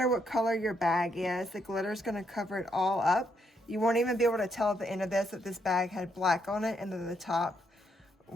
what color your bag is, the glitter is going to cover it all up. You won't even be able to tell at the end of this that this bag had black on it and that the top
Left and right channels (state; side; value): normal; both; correlation 0.76